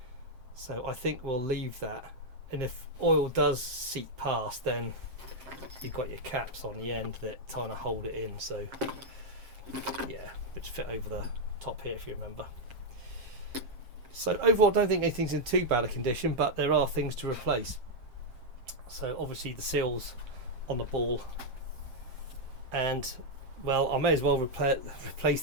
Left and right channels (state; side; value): late; left; 7.5 ms